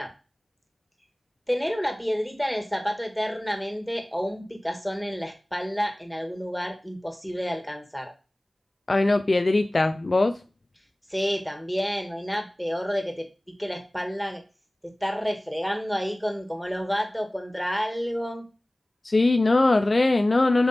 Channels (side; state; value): both; normal; correlation 0.98